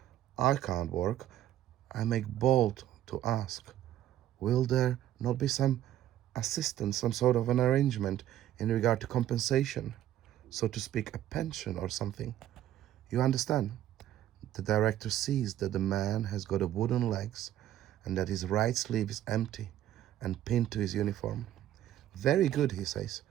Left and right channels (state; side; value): quieter; left; 12.4 dB